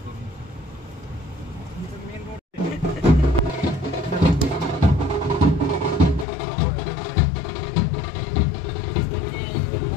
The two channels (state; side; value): drops out; right; at 6.2 s